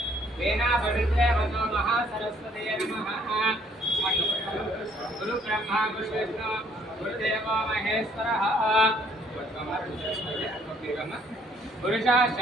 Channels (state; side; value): normal; both; correlation 0.64